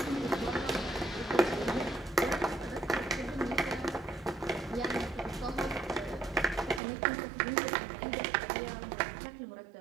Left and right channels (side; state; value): left; drops out; at 6.8 s